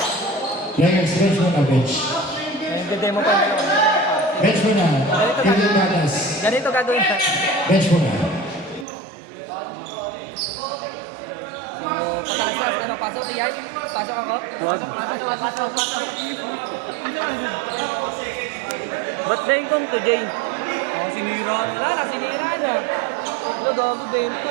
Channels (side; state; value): left; drops out; at 8.8 s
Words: Players, bench muna, bench. Nagde-demo pa yung dalawa. Bench muna. Kevin Batas. Ganito gagawin ka. Bench muna. Patalastas, ano, pasok yan? Pasok ako? Wag. Ba't dahil kong to, Jay? Oh, sinira na. Wala na, sinira na. Wala, gago, bento.